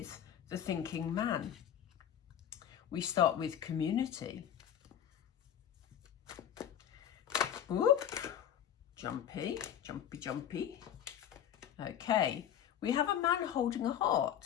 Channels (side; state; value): right; quieter; 9.9 dB